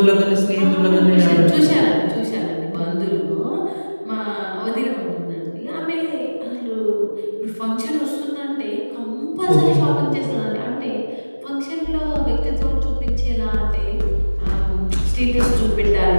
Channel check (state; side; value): inverted; both; correlation -1.00